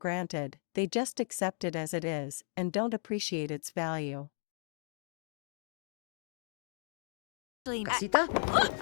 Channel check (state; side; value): silent; right; digital silence